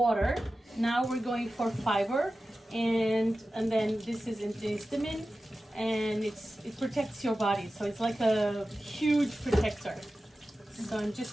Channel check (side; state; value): both; normal; correlation 0.94